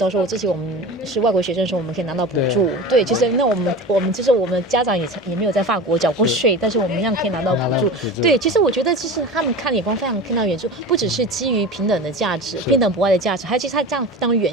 说，之前我们是外国学生的时候，我们可以拿到补助。对，其实那我们就是我们家长也没有在法国缴过税，但是我们一样可以拿到补助。对，其实我觉得其实他们看眼光非常看到远处，不只是基于平等的价值、平等博爱的价值，还有其实他这样非常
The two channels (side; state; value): both; normal; correlation 0.32